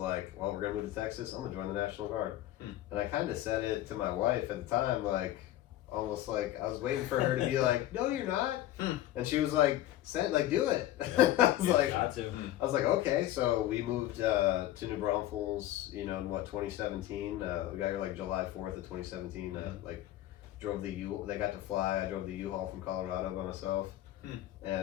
well, we're going to move to Texas. I'm going to join the National Guard. And I kind of said it to my wife at the time, like, almost like I was waiting for her to be like, no, you're not. And she was like, do it. I was like, okay. So we moved to New Braunfels, in 2017. We got here like July 4th of 2017. Drove they got to fly. I drove the U-Haul from Colorado by myself.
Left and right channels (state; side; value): quieter; right; 13.9 dB